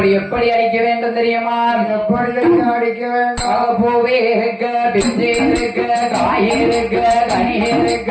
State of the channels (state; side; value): identical; both; correlation 1.00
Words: அடிக்க வேண்டும் தெரியுமா? எப்படி அடிக்க வேண்டும்? பூவே இருக்க பிஞ்சே இருக்க காய் இருக்க கனி இருக்க